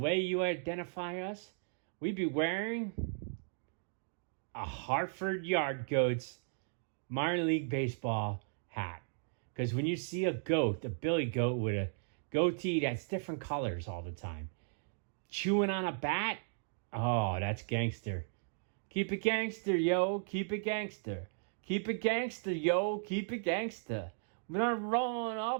you identify us, we'd be wearing a Hartford Yard Goats minor league baseball hat. Because when you see a goat, a billy goat with a goatee that's different colors all the time, chewing on a bat, oh, that's gangster. Keep it gangster, yo. Keep it gangster. Keep it gangster, yo. Keep it gangster. When I'm rolling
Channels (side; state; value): left; silent; digital silence